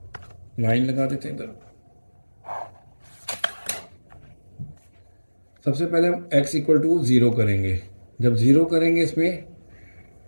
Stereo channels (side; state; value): both; inverted; correlation -1.00